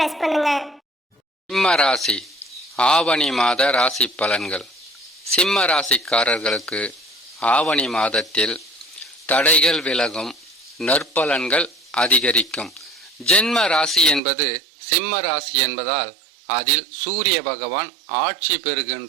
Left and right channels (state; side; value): drops out; left; at 14.2 s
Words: பண்ணுங்க. சிம்ம ராசி ஆவணி மாத ராசி பலன்கள். சிம்ம ராசிக்காரர்களுக்கு ஆவணி மாதத்தில் தடைகள் விலகும், நற்பலன்கள் அதிகரிக்கும். ஜென்ம ராசி என்பது சிம்ம ராசி என்பதால் அதில் சூரிய பகவான் ஆட்சி